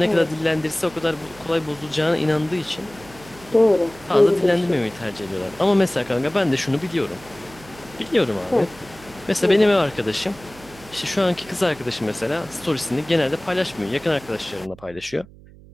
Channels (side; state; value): right; noise; hum, 22 dB below the sound